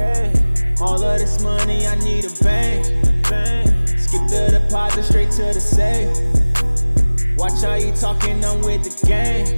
all of this money, I need a bank. Skip the deposit straight to the safe. Watch how you talking, I'm with the gang.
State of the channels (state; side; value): inverted; both; correlation -1.00